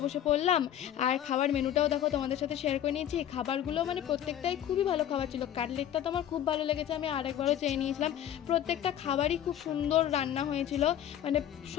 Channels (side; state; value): right; quieter; 10.7 dB